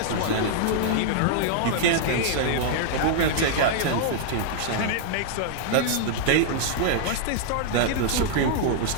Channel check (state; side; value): different; both; correlation -0.01